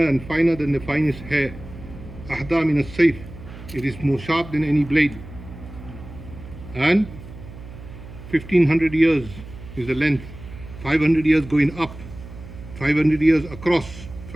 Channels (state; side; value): noise; right; hum, 15 dB below the sound